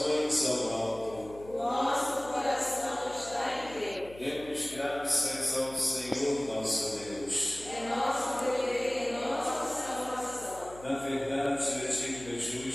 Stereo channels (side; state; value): left; noise; hum, 19 dB below the sound